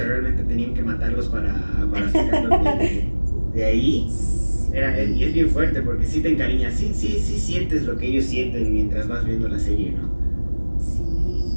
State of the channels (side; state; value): both; inverted; correlation -1.00